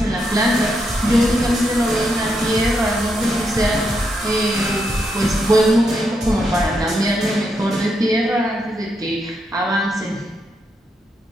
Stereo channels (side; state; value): both; normal; correlation 0.81